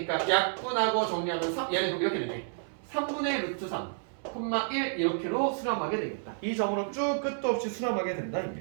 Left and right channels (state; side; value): silent; left; 58 dB below the other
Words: 약분하고 정리하면 얘는 이렇게 되네. 3분의 루트 3 콤마 1 이렇게로 수렴하게 되겠다. 이 점으로 쭉 끝도 없이 수렴하게 된다